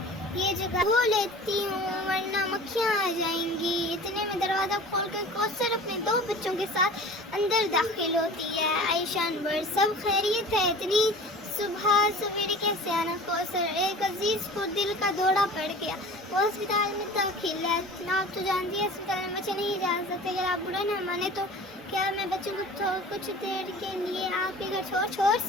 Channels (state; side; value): normal; both; correlation 0.41